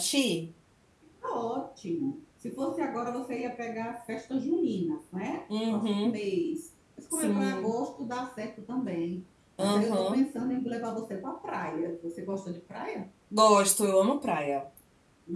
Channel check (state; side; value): identical; both; correlation 1.00